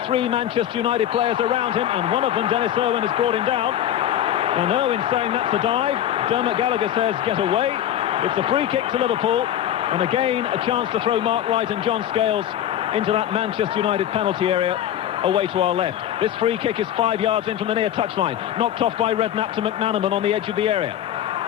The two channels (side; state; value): right; quieter; 11.1 dB